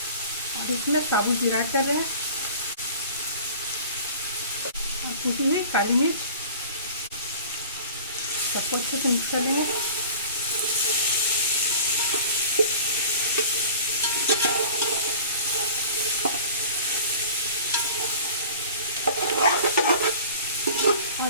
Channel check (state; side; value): inverted; both; correlation -0.43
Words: और इसमें साबुत जीरा ऐड कर रहे हैं और कुटी हुई काली मिर्च। सबको अच्छे से मिक्स कर लेंगे।